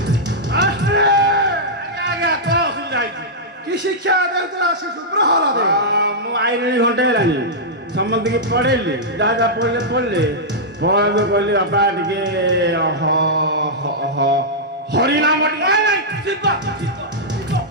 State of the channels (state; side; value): normal; both; correlation -0.09